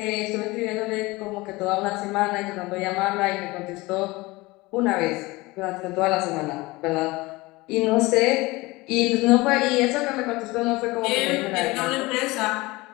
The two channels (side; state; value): right; quieter; 21.9 dB